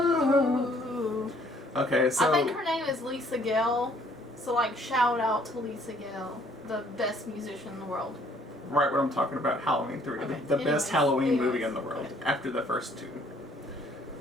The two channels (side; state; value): both; normal; correlation 0.62